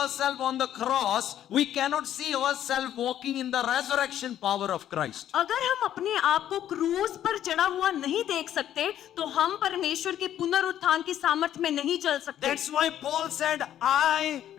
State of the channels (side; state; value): right; quieter; 11.2 dB